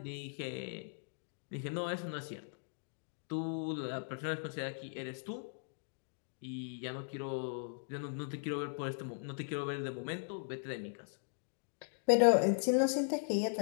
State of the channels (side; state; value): right; silent; digital silence